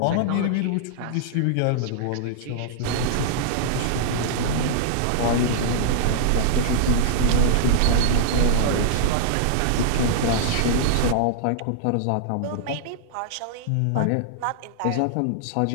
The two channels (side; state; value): both; different; correlation -0.01